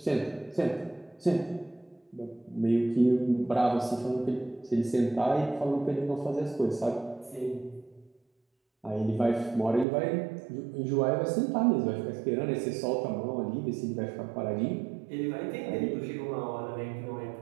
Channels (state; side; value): drops out; left; at 9.9 s